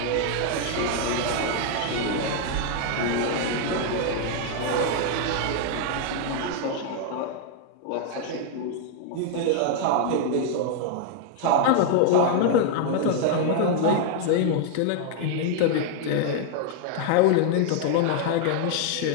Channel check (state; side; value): different; both; correlation 0.00